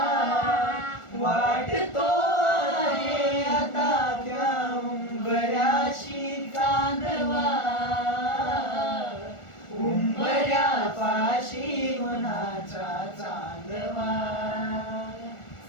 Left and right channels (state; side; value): late; right; 1.4 ms